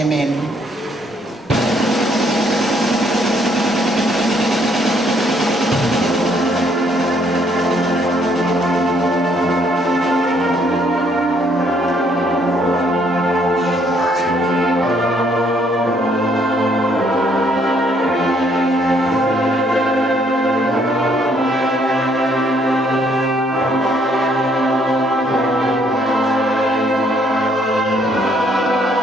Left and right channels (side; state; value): both; normal; correlation 0.68